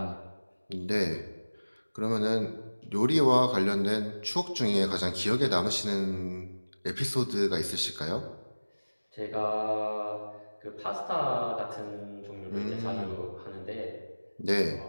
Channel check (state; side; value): inverted; both; correlation -1.00